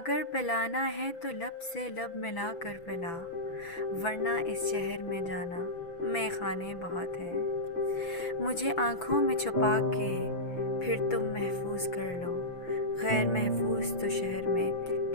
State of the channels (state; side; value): late; right; 6.0 ms